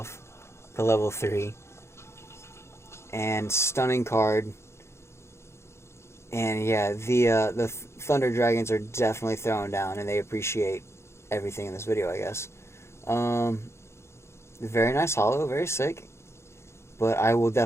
the level 3. And stunning card. And yeah, the Thunder Dragons are definitely throwing down, and they appreciate everything in this video, I guess. Very nice holo, very sick. But I will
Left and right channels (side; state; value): right; late; 0.13 ms